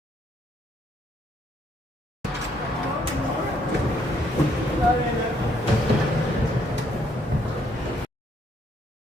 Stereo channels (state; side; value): normal; both; correlation 0.69